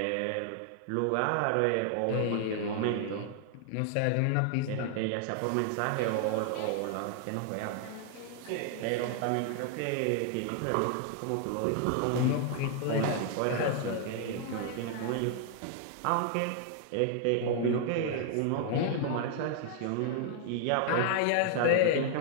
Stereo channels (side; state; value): both; different; correlation 0.00